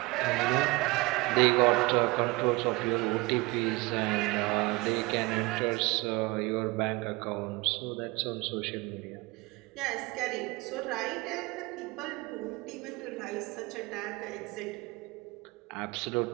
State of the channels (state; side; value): quieter; left; 23.6 dB